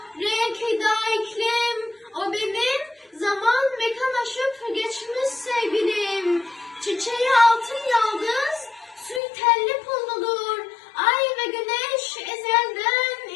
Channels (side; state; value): right; drops out; at 9.2 s